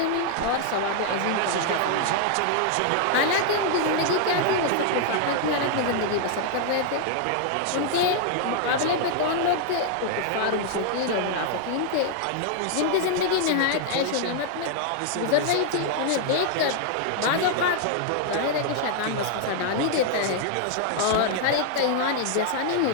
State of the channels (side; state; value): both; different; correlation 0.00